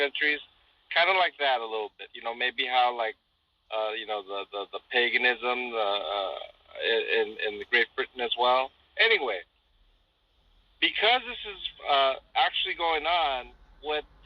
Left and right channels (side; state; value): both; identical; correlation 1.00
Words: Kind of like that a little bit. You know, maybe how like the paganism in the Great Britain as well. Anyway, because this is actually going on, what